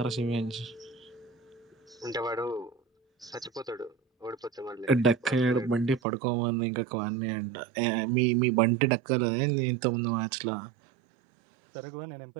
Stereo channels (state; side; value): drops out; left; at 6.0 s